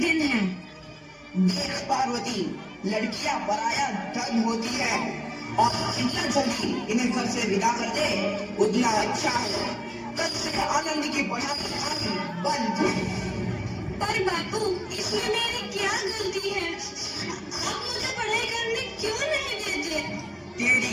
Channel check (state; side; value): identical; both; correlation 1.00